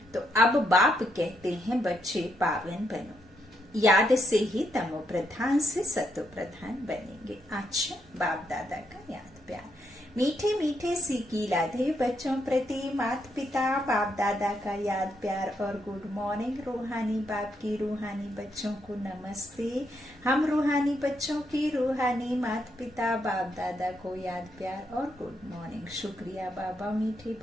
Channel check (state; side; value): normal; both; correlation 0.78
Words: तो अब बाप कहते हैं बच्चे पावन बनो, याद से ही तमो प्रधान से सतो प्रधान बनेंगे। अच्छा, बाप दादा का याद प्यार, मीठे मीठे सीखी लाधे बच्चों प्रति माता पिता बाप दादा का याद प्यार और गुड मॉर्निंग। रूहानी बाप की रूहानी बच्चों को नमस्ते। हम रूहानी बच्चों की रूहानी माता पिता बाप दादा को याद प्यार और गुड मॉर्निंग। शुक्रिया बाबा, मीठे